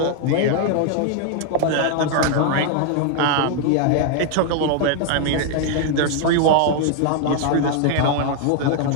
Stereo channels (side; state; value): both; different; correlation 0.00